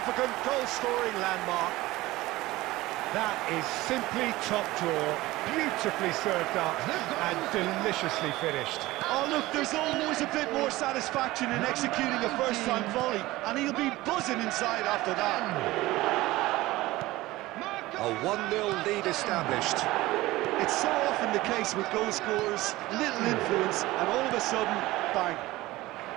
goal-scoring landmark. That is simply top draw, beautifully served up and deliciously finished. Oh look, there's always a bit more satisfaction in executing a first-time volley, and he'll be buzzing inside after that. A 1-0 lead established. It's so often the case with goal scorers, little influence, and all of a sudden, bang.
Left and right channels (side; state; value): left; quieter; 18.5 dB